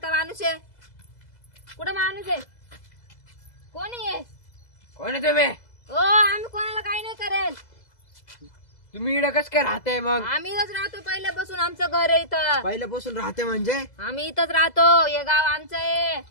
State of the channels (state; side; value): late; right; 2.0 ms